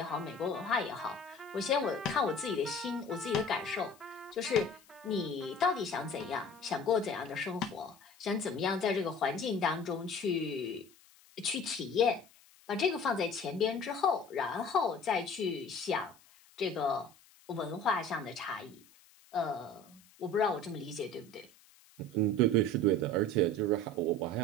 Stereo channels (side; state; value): left; noise; hiss, 27 dB below the sound